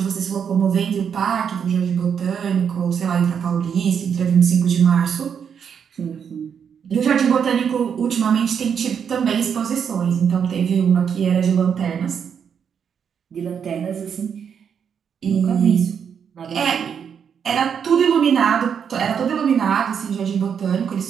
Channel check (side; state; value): left; quieter; 7.4 dB